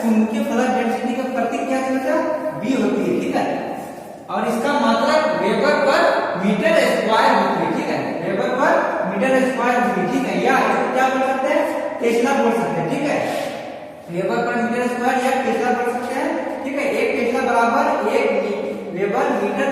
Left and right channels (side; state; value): both; identical; correlation 1.00